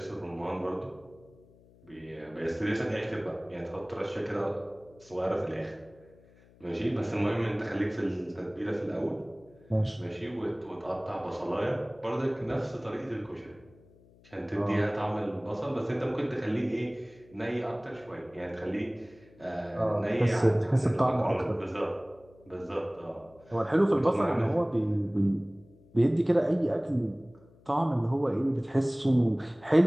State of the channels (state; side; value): noise; left; hum, 27 dB below the sound